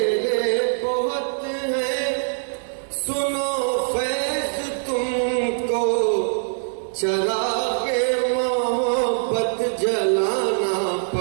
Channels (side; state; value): left; silent; digital silence